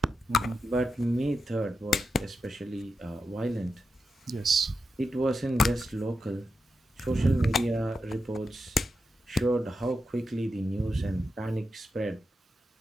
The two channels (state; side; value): normal; both; correlation 0.88